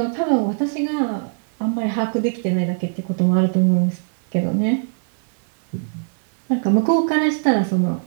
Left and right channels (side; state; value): left; silent; 65 dB below the other